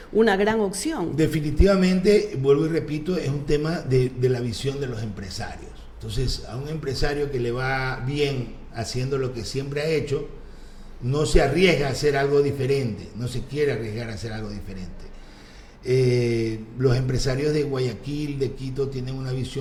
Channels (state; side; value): identical; both; correlation 1.00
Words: una gran opción. Definitivamente, vuelvo y repito, es un tema de la visión de los empresarios. Entonces, a un empresario que le va bien haciendo lo que siempre ha hecho, no se arriesga a hacer algo diferente, no se quiere arriesgar a hacer algo diferente. Los empresarios de Guayaquil, de Quito, tienen una